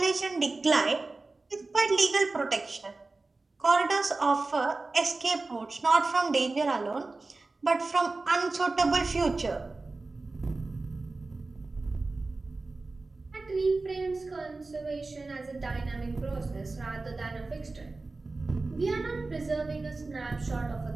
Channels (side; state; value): left; quieter; 3.5 dB